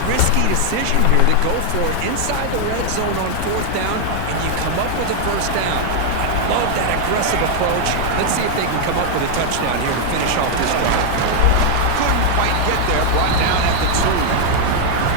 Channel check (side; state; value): both; different; correlation 0.00